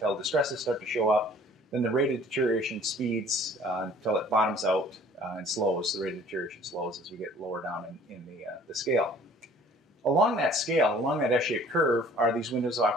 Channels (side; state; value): both; normal; correlation 0.53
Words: distresses start to show up. Then the rate of deterioration speeds until it bottoms out and slows. The rate of deterioration slows as we get lower down in the scale. Along that scale, along that S-shaped curve, are these windows of